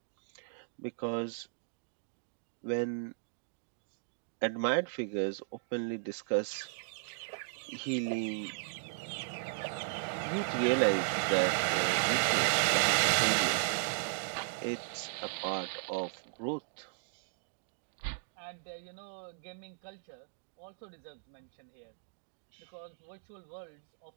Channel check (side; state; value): left; silent; digital silence